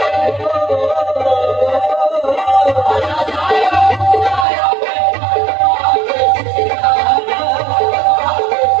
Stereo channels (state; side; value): drops out; left; at 4.5 s